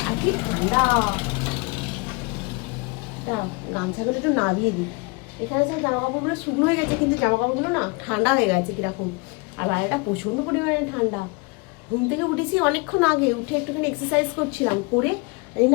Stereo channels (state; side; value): quieter; right; 28.5 dB